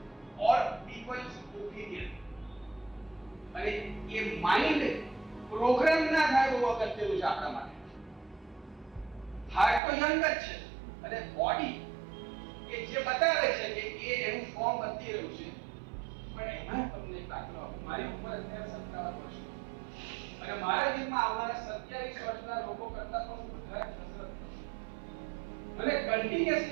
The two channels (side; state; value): left; drops out; at 9.8 s